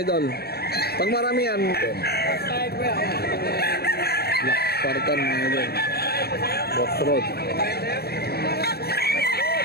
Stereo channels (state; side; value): late; right; 0.46 ms